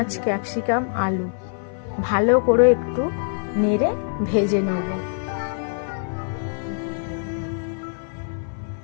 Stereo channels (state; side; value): silent; right; 56 dB below the other